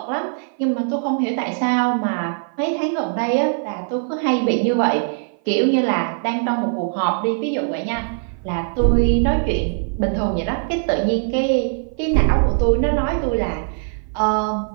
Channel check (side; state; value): left; silent; 55 dB below the other